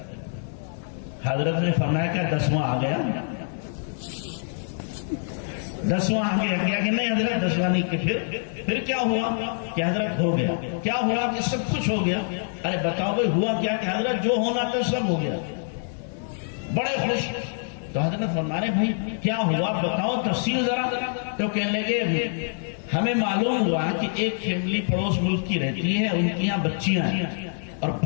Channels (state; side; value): silent; right; digital silence